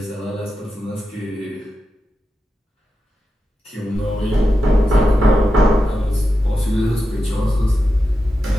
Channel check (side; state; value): both; normal; correlation 0.90